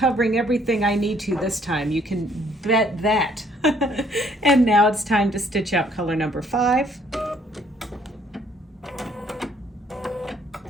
everything I need to this time. You can bet that. And now it's time to stitch out color number 5.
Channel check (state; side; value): normal; both; correlation 0.64